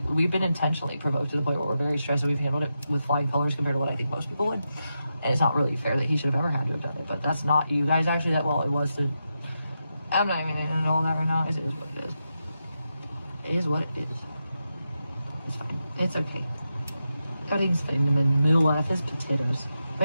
been intentionally provoked to the point where we're very stressed, and we've handled it with flying colors compared to what I think most people would. And it's not really fair that he should have ever had to have done it. But that's not you guys actually. That well, it was to. I'm not even into all that right now. It is what it is. It is what it is. It's fine. It's okay. Everything's fine. The middle of his potatoes.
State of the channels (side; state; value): both; inverted; correlation -0.87